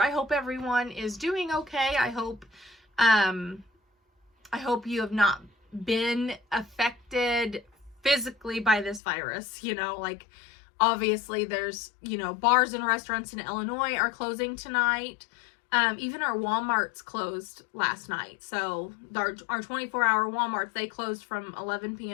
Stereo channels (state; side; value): drops out; right; at 9.0 s